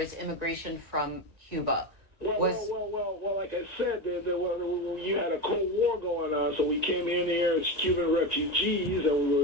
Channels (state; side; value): late; left; 1.9 ms